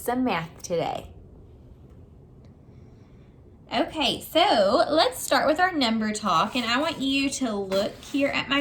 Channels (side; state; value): both; identical; correlation 1.00